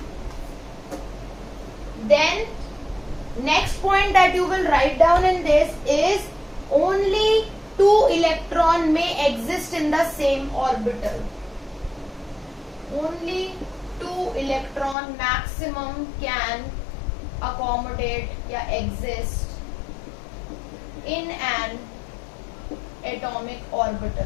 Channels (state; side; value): drops out; right; at 15.0 s